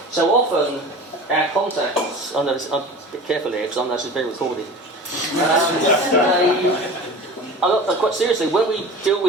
So often our contacts, I'm a bit careful here because I know this is being recorded. Quite seriously, when we deal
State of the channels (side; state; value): both; normal; correlation 0.36